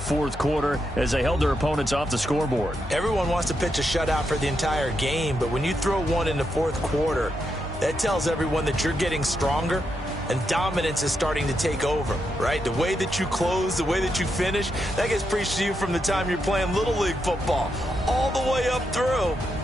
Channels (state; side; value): normal; both; correlation 0.83